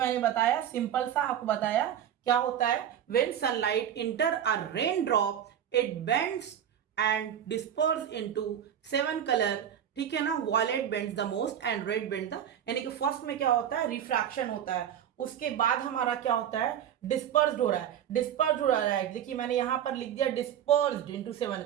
बताया सिंपल सा आपको बताया क्या होता है, when sunlight enter a raindrop it bends and disperses into 7 color, ठीक है ना, violet bends the most and red bends the, यानी कि फर्स्ट में क्या होता है, रिफ्रैक्शन होता है, उसके बाद हमारा क्या होता है, डिस्पर्स्ड हो रहा है। देखिए मैंने यहां पर लिख दिया डिस्पर्स्ड इनटू 7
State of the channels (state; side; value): quieter; left; 9.8 dB